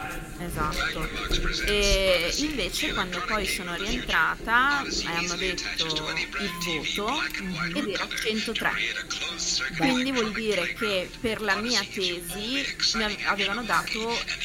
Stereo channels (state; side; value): identical; both; correlation 1.00